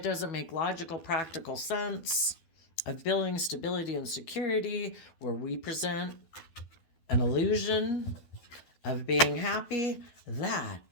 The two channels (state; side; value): late; right; 12 ms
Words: doesn't make logical, practical sense of building stability and security, where we present an illusion of being happy, that